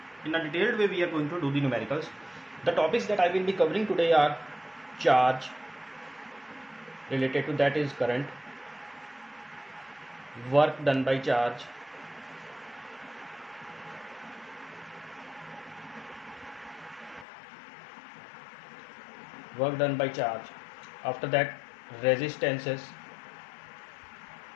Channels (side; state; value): right; drops out; at 17.2 s